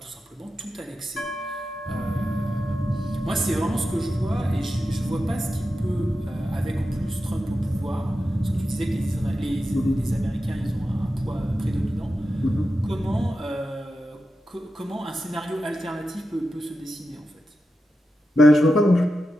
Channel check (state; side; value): normal; both; correlation 0.90